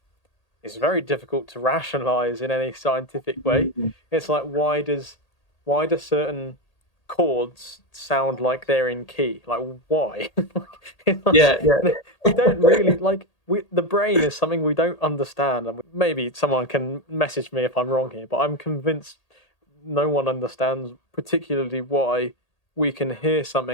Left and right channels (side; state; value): right; late; 1.8 ms